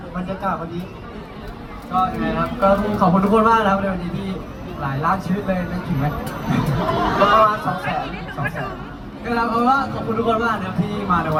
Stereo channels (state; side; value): identical; both; correlation 1.00